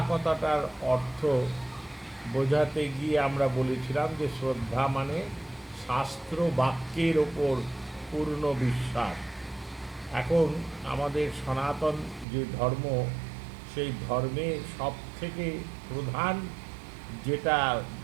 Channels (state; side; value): drops out; left; at 12.2 s